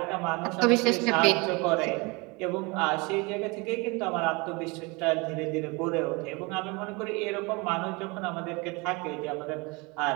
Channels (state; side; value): quieter; left; 27.1 dB